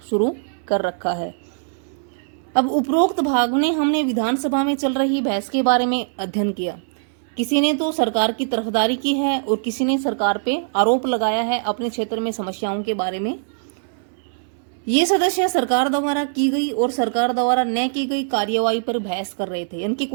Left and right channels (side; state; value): left; silent; 61 dB below the other